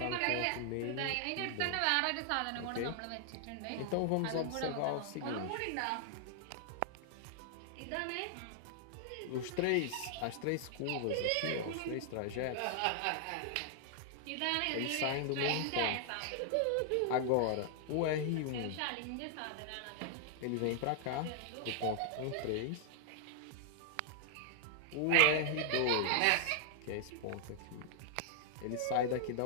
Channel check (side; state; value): both; different; correlation 0.00